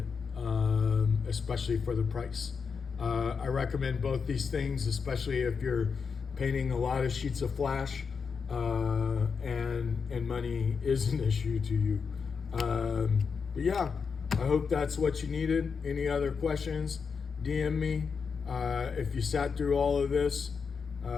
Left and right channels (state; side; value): quieter; right; 5.7 dB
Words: especially for the price. I recommend both these things, especially if you're painting a lot of sheets of flash and money is an issue to you. But yeah, I hope that's what you needed. Any other questions, DM me. If you sat through all of this,